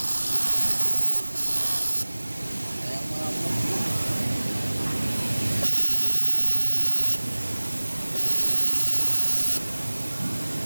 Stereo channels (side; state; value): both; inverted; correlation -1.00